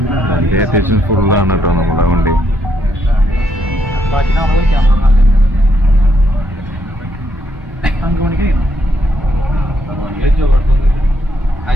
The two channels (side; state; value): both; normal; correlation 0.75